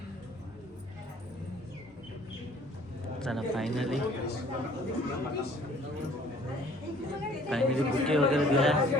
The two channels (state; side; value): normal; both; correlation 0.55